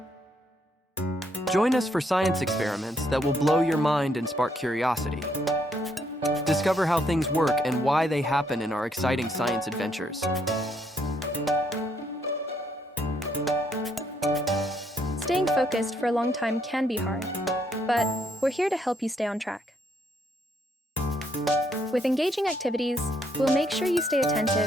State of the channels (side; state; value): both; normal; correlation 0.72